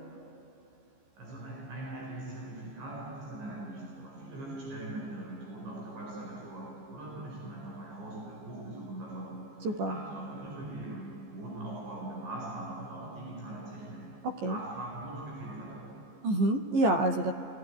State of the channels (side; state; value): left; late; 15 ms